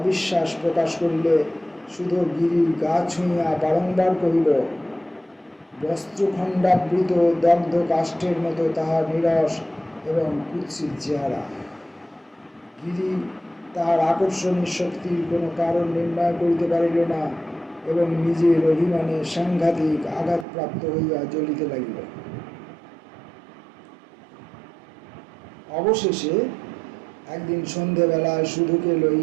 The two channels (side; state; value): left; drops out; at 20.5 s